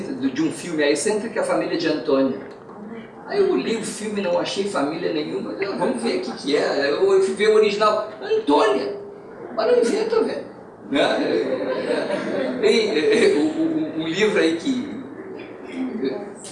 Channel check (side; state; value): both; identical; correlation 1.00